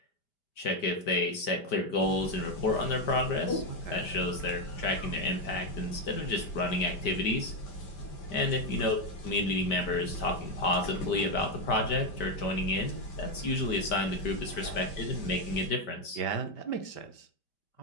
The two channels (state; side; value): late; right; 5.1 ms